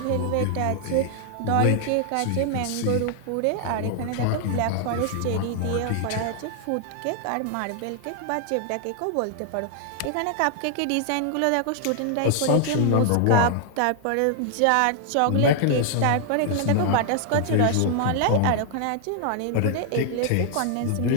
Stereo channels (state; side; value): different; both; correlation 0.00